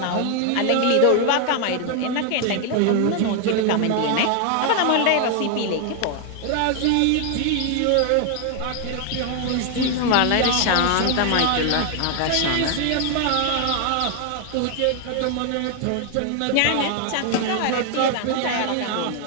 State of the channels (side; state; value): both; different; correlation 0.00